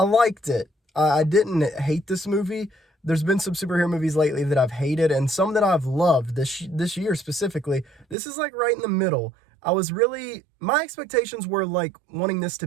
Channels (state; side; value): drops out; left; at 8.2 s